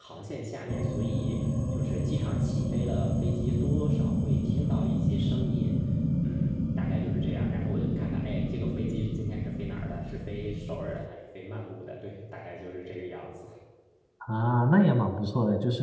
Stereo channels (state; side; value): identical; both; correlation 1.00